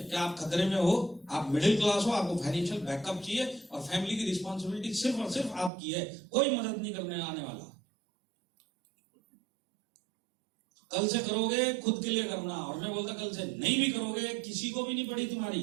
कि आप खतरे में हो, आप मिडिल क्लास हो, आपको फाइनेंशियल बैकअप चाहिए और फैमिली की रिस्पॉन्सिबिलिटी सिर्फ और सिर्फ आपकी है, कोई मदद नहीं करने आने वाला। कल से करोगे खुद के लिए करना। और मैं बोलता कल से नहीं भी करोगे किसी को भी नहीं पड़ी तुम्हारी,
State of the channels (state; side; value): drops out; left; at 5.7 s